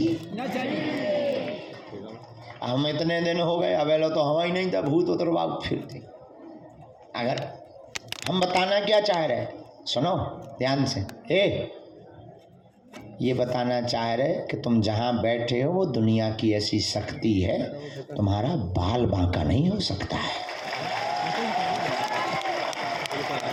न चली। हम इतने दिन हो गए, अवेलो तो हवा ही नहीं था, भूत उतरवा फिरते। अगर हम बताना क्या चाह रहे, सुनो ध्यान से। ये बताना चाह रहे कि तुम जहाँ बैठे हो वो दुनिया की ऐसी शक्ति है, तुम्हारा बाल बांका नहीं हो सकता है।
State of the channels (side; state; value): both; identical; correlation 1.00